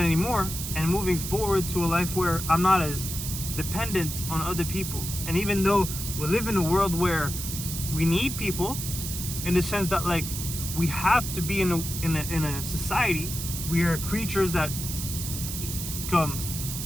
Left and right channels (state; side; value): noise; right; hiss, 6 dB below the sound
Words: and moving forward to a life where I'm not as dependent on other people. And even though we live in a world where we need people, in the sense that we have to be in a society, we are creatures that